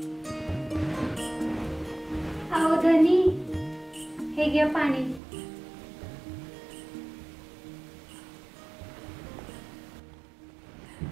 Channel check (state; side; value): drops out; left; at 5.2 s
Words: अहो धनी हे घ्या पाणी.